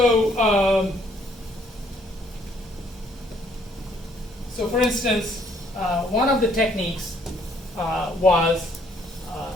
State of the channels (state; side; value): normal; both; correlation 0.65